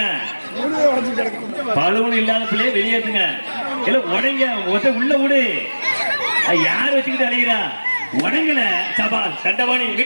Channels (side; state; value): both; inverted; correlation -1.00